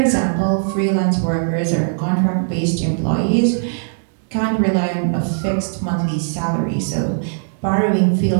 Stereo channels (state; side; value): silent; left; 67 dB below the other